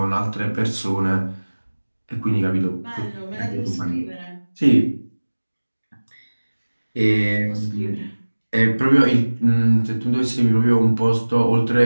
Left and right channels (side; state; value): both; inverted; correlation -1.00